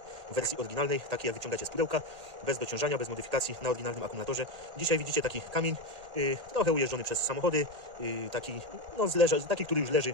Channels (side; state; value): left; late; 1.8 ms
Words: w wersji oryginalnej, takiej jak wyciągacie z pudełka, bez dociążania, bez modyfikacji, na oryginalnym akumulatorze. Dzisiaj widzicie taki kamień, trochę ujeżdżony przez samochody, taki, no, taki, który już leży